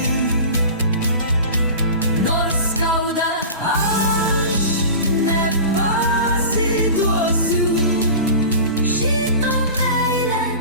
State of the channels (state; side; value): inverted; both; correlation -0.34